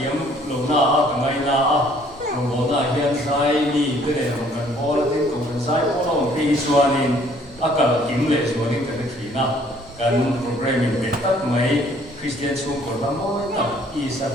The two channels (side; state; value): both; normal; correlation 0.60